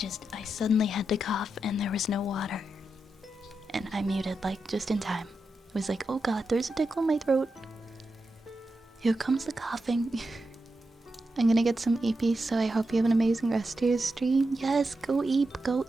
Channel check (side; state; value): both; normal; correlation 0.87